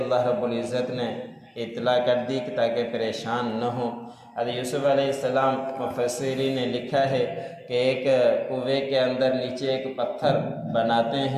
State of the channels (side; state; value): both; identical; correlation 1.00